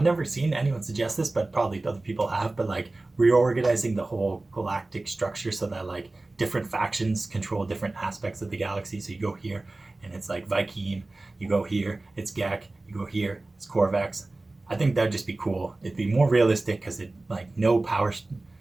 never seen anyone suggest this, but probably other people have, but like reorganizing the whole galactic structure so that like different factions control different aspects of the galaxy. So you go here and it's like Viking, you go here, it's Gek, you go here, it's Corvex. I think that'd just be cool. It'd be more realistic because it like no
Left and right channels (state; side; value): quieter; left; 3.0 dB